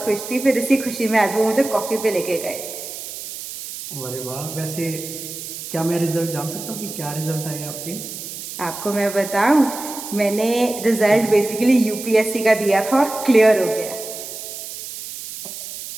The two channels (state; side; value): noise; right; hiss, 10 dB below the sound